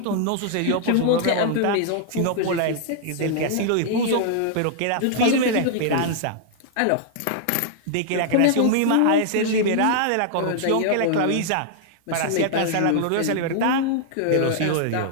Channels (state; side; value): different; both; correlation -0.01